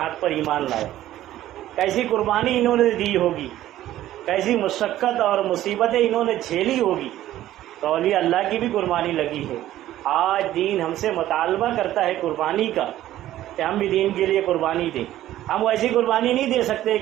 پر ایمان لائے. کیسی قربانی انہوں نے دی ہوگی، کیسی مشقت اور مصیبتیں انہوں نے جھیلی ہوگی. تو اولیاء اللہ کی بھی قربانی لگی ہے. آج دین ہم سے مطالبہ کرتا ہے قربانی کا کہ ہم بھی دین کے لیے قربانی دیں. ہم ویسی قربانی نہیں دے سکتے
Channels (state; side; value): quieter; left; 13.7 dB